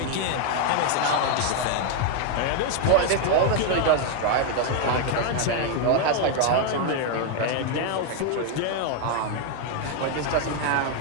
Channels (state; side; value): different; both; correlation 0.01